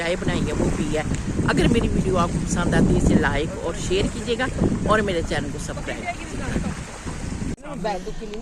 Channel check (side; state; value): both; identical; correlation 1.00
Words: बनाई है वो पी है। अगर मेरी वीडियो आपको पसंद आती है इसे लाइक और शेयर कीजिएगा, और मेरे चैनल को सब्सक्राइब कीजिएगा।